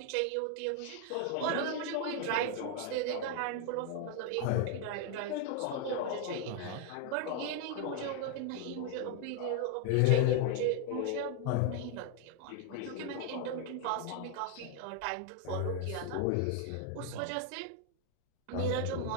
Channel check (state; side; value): different; both; correlation 0.01